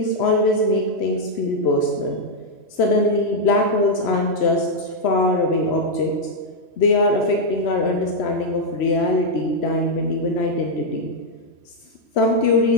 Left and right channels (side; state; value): right; late; 3.0 ms